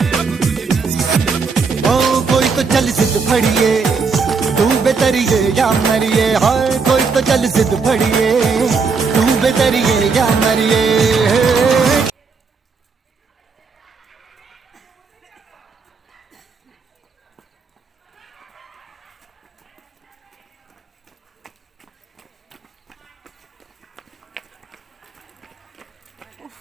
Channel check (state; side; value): quieter; left; 4.9 dB